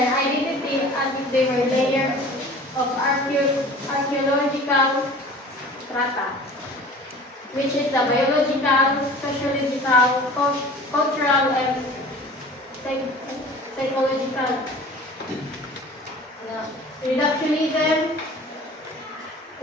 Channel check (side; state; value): both; normal; correlation 0.43